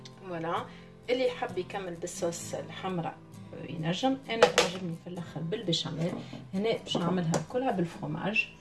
فوالا اللي يحب يكمل بالصوص الحمراء ينجم. انا تعجبني في الاخر بالبشاميل. هنا باش نعملها كلها بالفرomage.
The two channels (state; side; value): identical; both; correlation 1.00